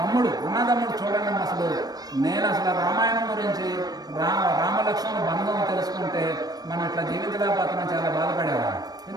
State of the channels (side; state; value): left; late; 0.19 ms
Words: అన్నదమ్ముడు చూడండి, నేను అసలు రామాయణం గురించి రామలక్ష్మణ బంధం తెలుసుకుంటే మనం ఇట్లా జీవితలేకపోతున్నాం, చాలా బాధపడేవాడు.